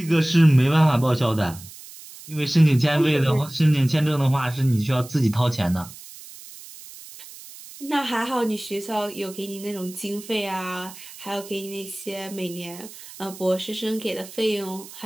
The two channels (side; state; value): right; noise; hiss, 17 dB below the sound